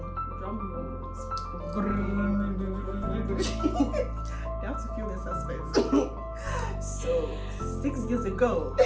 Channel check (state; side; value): identical; both; correlation 1.00